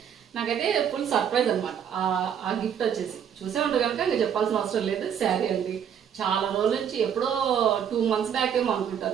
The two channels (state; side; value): quieter; left; 8.5 dB